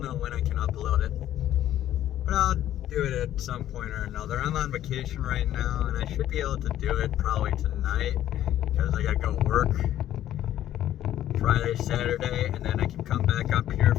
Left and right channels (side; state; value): right; quieter; 12.3 dB